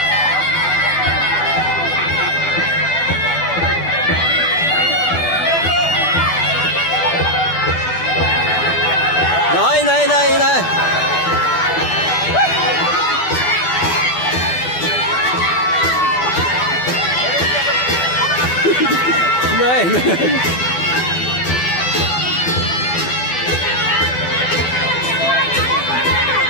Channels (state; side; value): late; right; 12 ms